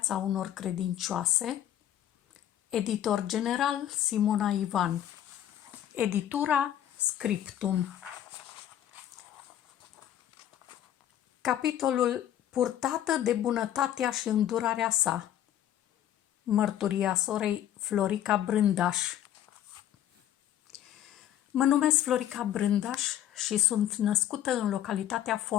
unor credincioase. Editor general Simona Ivan. Editura Scriptum. Capitolul Purtată de bunătatea și îndurarea sa. Mărturia sorei Florica Brândaș. Mă numesc Florica Brândaș și sunt născută în localitatea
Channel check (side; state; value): right; quieter; 11.5 dB